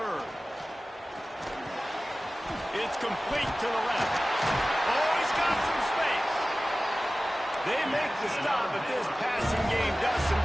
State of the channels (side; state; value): both; normal; correlation 0.97